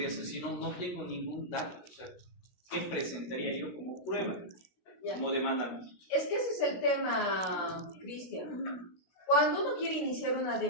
hacer si no tengo ningún dato? O sea, ¿qué presentaría yo como prueba, como demandante? Es que ese es el tema, Cristian. Cuando uno quiere iniciar una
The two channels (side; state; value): right; late; 16 ms